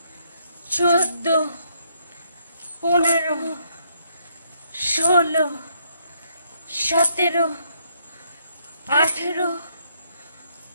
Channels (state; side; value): inverted; both; correlation -0.72